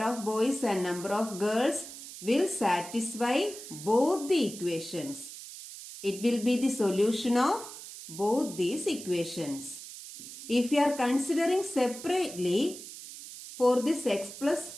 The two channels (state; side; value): noise; right; hiss, 13 dB below the sound